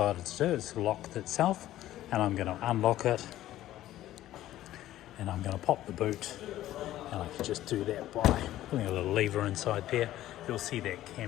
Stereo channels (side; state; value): right; quieter; 14.0 dB